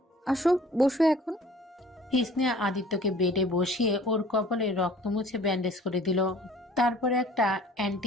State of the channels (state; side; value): normal; both; correlation 0.50